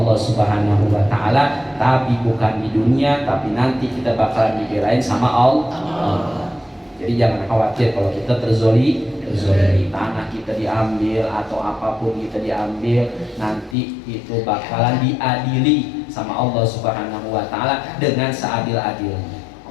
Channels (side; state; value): right; drops out; at 13.8 s